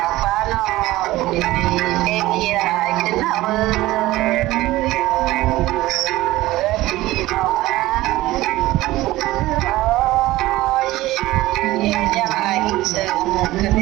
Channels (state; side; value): quieter; left; 17.4 dB